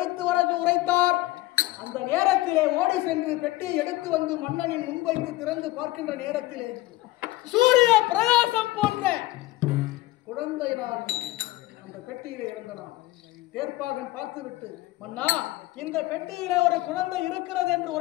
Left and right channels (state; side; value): quieter; right; 18.3 dB